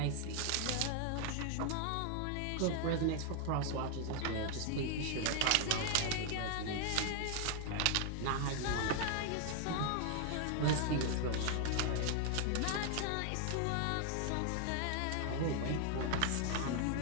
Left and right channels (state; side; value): different; both; correlation 0.00